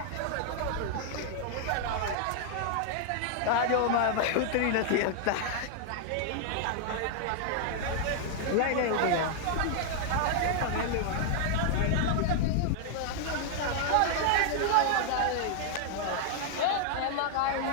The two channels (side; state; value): both; different; correlation 0.00